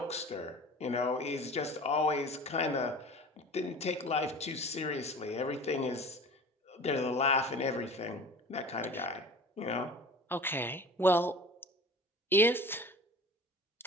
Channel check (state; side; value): normal; both; correlation 0.40